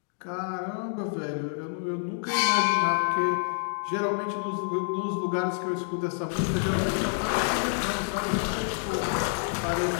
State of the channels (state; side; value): silent; right; 59 dB below the other